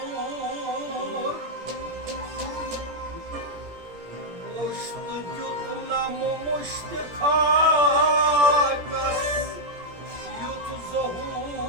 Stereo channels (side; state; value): left; late; 17 ms